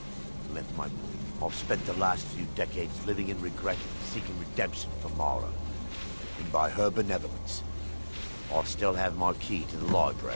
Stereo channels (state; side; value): inverted; both; correlation -1.00